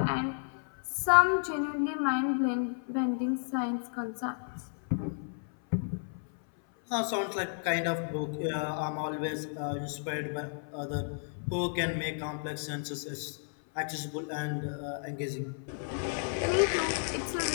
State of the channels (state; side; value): silent; right; 56 dB below the other